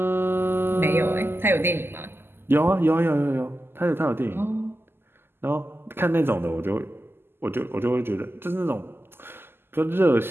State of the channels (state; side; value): late; left; 0.11 ms